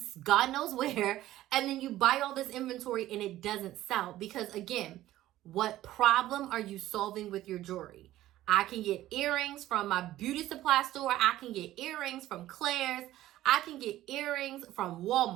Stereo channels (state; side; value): quieter; left; 14.6 dB